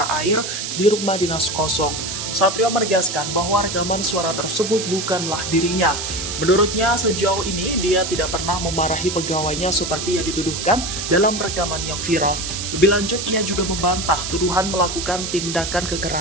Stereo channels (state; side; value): noise; right; hiss, 5 dB below the sound